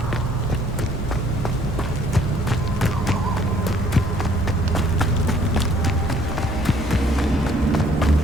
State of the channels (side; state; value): both; normal; correlation 0.61